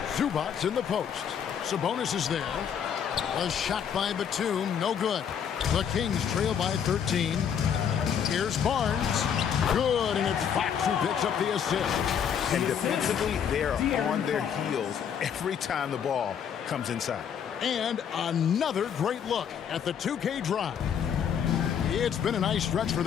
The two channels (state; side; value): quieter; right; 8.1 dB